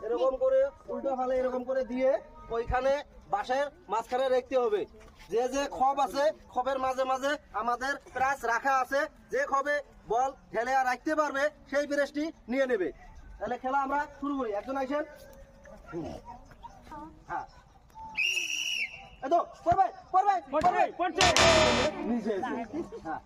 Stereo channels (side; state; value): both; identical; correlation 1.00